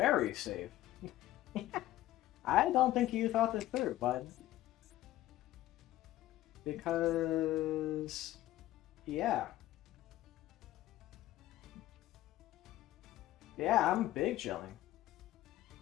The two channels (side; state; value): right; quieter; 14.9 dB